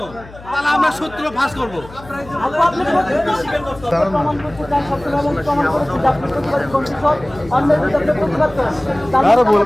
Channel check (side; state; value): left; noise; hum, 19 dB below the sound